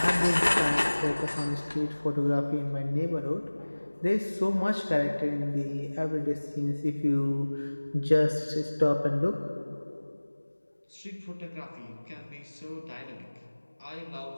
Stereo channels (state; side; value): inverted; both; correlation -1.00